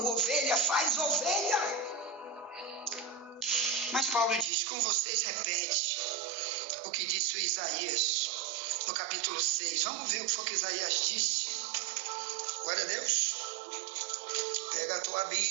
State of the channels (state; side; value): drops out; left; at 4.5 s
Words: ovelha faz ovelha. Mas Paulo diz, com vocês repete o que disse o Isaías no capítulo 6. Vamos ver o que foi que Isaías disse. Glória a Deus. Pega a tua